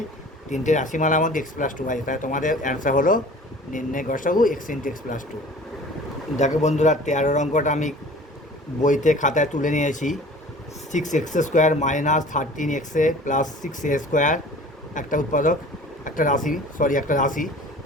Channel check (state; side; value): normal; both; correlation 0.45